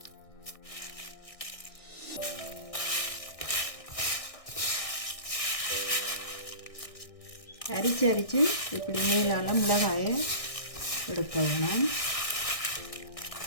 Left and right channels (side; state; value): right; late; 1.6 ms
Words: அரிச்சு இப்படி நீளால மிளகாயை எடுக்கணும்.